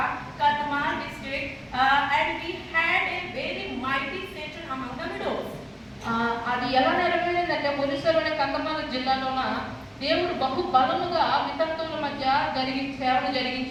Kadma district, and we had a very mighty session among the widows. అది ఎలా నెరవేరిందంటే, ఒరిస్సాలోని కందమాల జిల్లాలోన దేవుడు బహు బలముగా వితంతువుల మధ్య సేవను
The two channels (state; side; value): identical; both; correlation 1.00